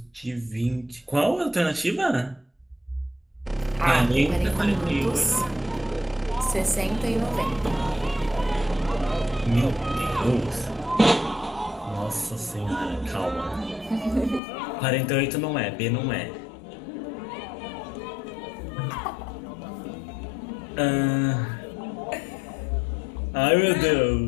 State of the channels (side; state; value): right; drops out; at 14.4 s